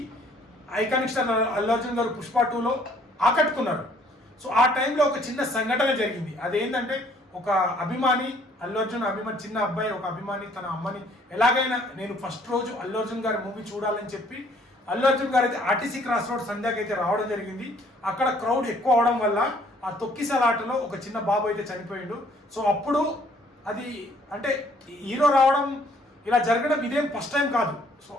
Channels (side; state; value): both; normal; correlation 0.61